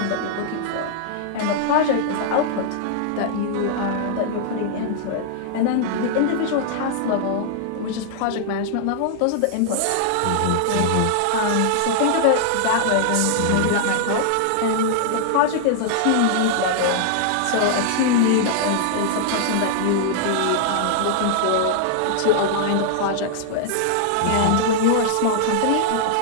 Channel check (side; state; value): both; different; correlation -0.01